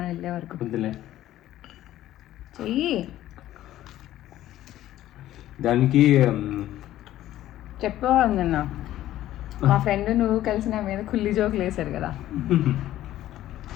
వెళ్ళే వరకు. చెయ్యి. దానికి చెప్పేవాళ్ళు నిన్న మా ఫ్రెండ్ నువ్వు కలిసి నా మీద కుల్లి జోకులు వేశారు కదా.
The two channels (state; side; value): quieter; right; 13.7 dB